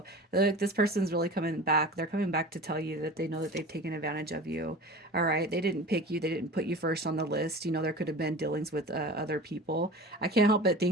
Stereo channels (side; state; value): both; normal; correlation 0.37